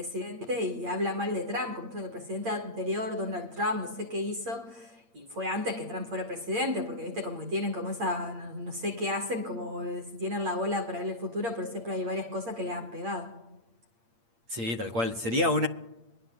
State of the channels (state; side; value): late; left; 8.7 ms